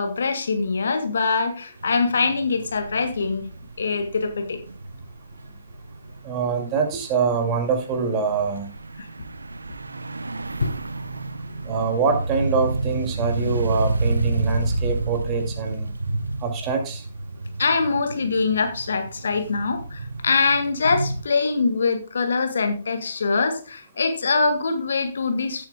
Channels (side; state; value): both; inverted; correlation -0.67